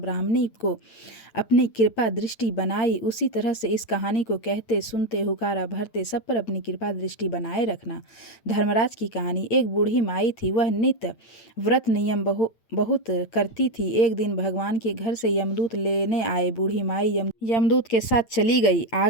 को अपनी कृपा दृष्टि बनाई, उसी तरह से इस कहानी को कहते सुनते हुकारा भरते सब पर अपनी कृपा दृष्टि बनाए रखना। धर्मराज की कहानी। एक बूढ़ी माई थी। वह नित्य व्रत नियम बहुत करती थी। एक दिन भगवान के घर से यमदूत लेने आए। बूढ़ी माई यमदूत के साथ चली गई।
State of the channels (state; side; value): late; right; 8.9 ms